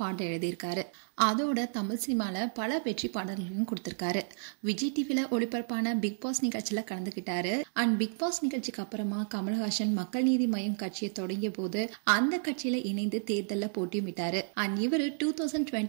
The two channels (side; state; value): left; silent; digital silence